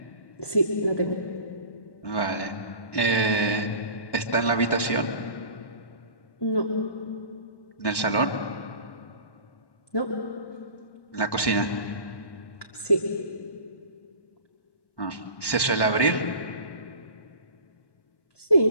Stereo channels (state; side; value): late; right; 1.1 ms